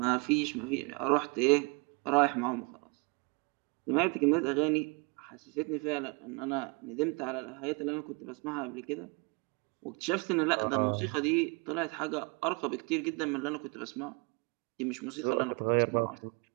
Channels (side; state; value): left; quieter; 31.1 dB